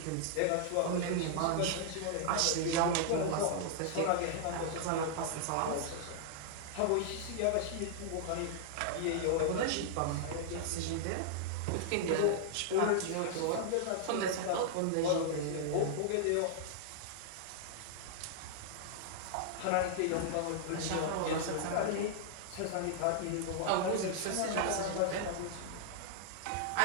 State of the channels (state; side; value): different; both; correlation -0.01